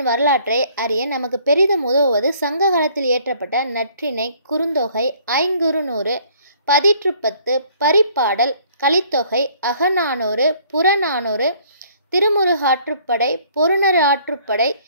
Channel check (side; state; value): both; inverted; correlation -0.60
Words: வரலாற்றை அறிய நமக்கு பெரிதும் உதவுவது சங்க காலத்தில் இயற்றப்பட்ட நற்றிணை, குறுந்தொகை, ஐங்குறுநூறு, பதிற்றுப்பத்து, பரிபாடல், கலித்தொகை, அகநானூறு, புறநானூறு, திருமுருகாற்றுப்படை, பொருணர் ஆற்றுப்படை,